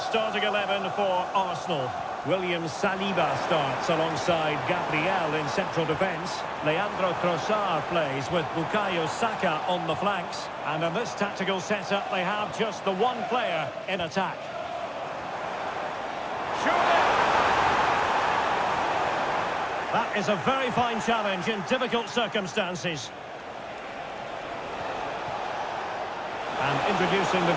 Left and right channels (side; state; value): both; identical; correlation 1.00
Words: 11 for Arsenal. William Saliba starts alongside Gabriel in central defence. Leandro Trossard plays with Bukayo Saka on the flanks. And in this tactical setup, they have just the one player in attack. Shooting! That is a very fine challenge in difficult circumstances. And introducing the